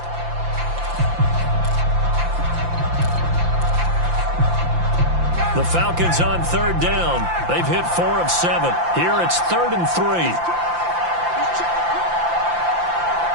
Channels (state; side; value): late; left; 5.8 ms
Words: The Falcons on third down. They've hit 4 of 7. Here it's 3rd and 3.